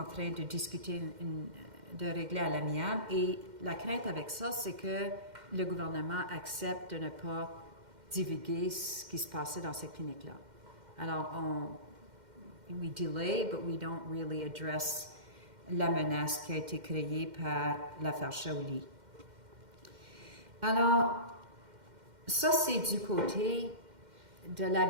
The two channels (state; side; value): late; left; 2.1 ms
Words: train de discuter, de régler à l'amiable. Et la crainte avec ça, c'est que le gouvernement accepte de ne pas divulguer ce qui se passait dans ces cliniques-là. Alors, we delay, but we don't really address la menace qui a été créée par l'affaire Shaoli. Alors, ça, c'est du côté de